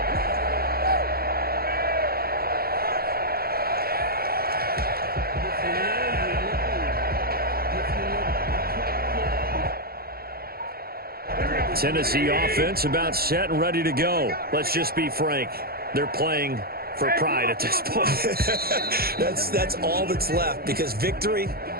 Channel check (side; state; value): left; late; 0.44 ms